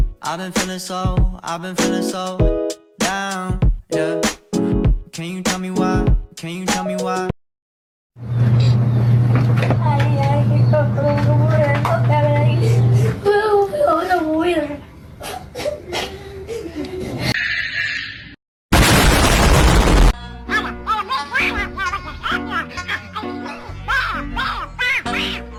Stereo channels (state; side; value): identical; both; correlation 1.00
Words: I've been feeling so down, yeah. Can you tell me why? Can you tell me why? Ay, kita keluar hotel lagi. Udah buir.